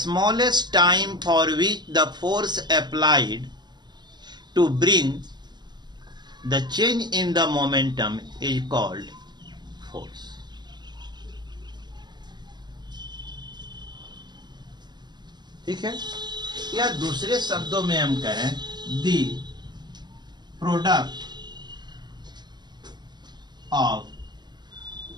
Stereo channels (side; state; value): left; late; 0.21 ms